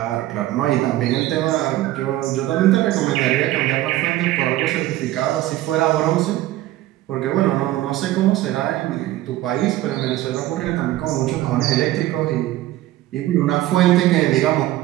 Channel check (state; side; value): quieter; left; 15.4 dB